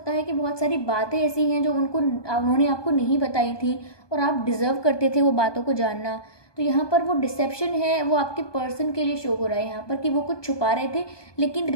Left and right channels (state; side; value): late; right; 1.2 ms